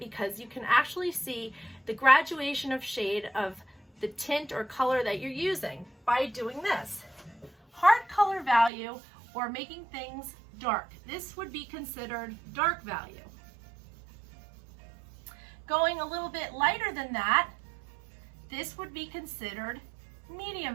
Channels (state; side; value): drops out; left; at 8.7 s